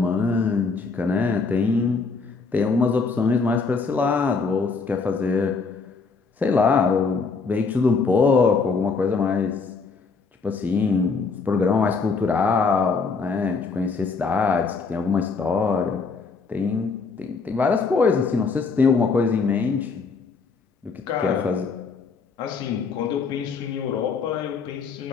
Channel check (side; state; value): right; quieter; 4.7 dB